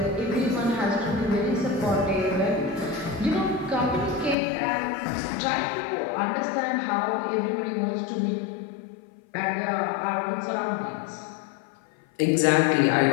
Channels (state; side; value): drops out; right; at 4.4 s